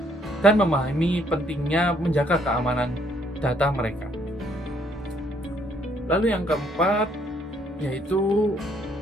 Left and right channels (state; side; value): normal; both; correlation 0.67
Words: dan memahami pentingnya menjaga keamanan data mereka. Lalu yang keempat yaitu